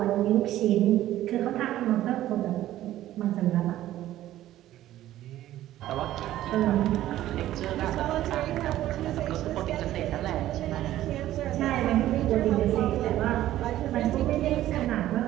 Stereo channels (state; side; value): quieter; left; 13.8 dB